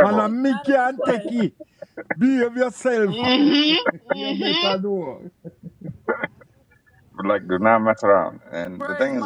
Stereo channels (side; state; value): both; identical; correlation 1.00